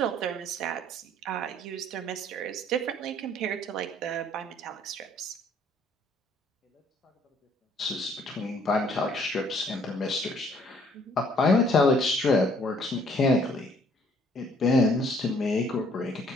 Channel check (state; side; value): normal; both; correlation 0.61